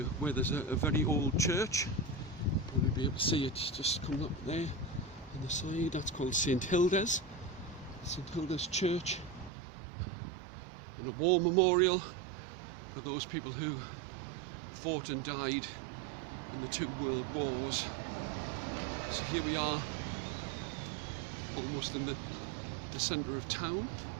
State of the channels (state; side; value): drops out; left; at 9.5 s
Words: where there's a very old church. You'll be able to see it just coming up there on the side. That's called St Hilda's Church, and a war memorial for those people who fought and died in the 2 world wars. So here we are, almost in the centre of town.